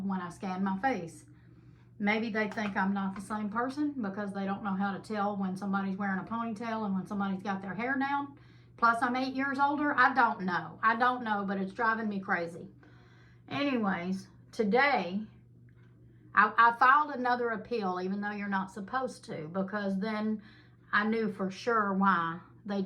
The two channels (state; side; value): identical; both; correlation 1.00